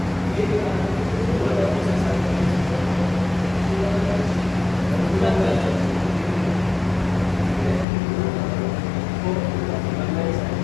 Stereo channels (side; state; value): right; drops out; at 7.9 s